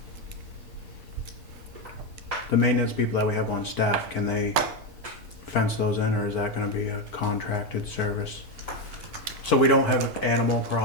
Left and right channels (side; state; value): both; normal; correlation 0.10